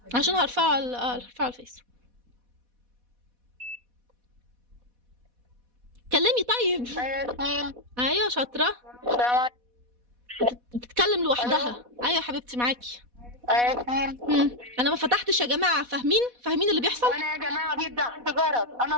عشان هرفعه على الفيس. كلمي طيب. ايوه شاطره. بتتكلم لوحدها. ايوه يا حبيبتي معاكي. انا ما فتحتش يا جماعه، فاهمين اللي بيحصل؟ انا يا جماعه بيبدا عندي جرس، انا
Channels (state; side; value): late; left; 4.1 ms